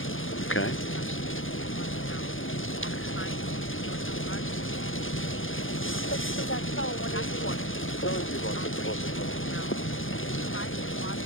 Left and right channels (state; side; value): late; right; 0.58 ms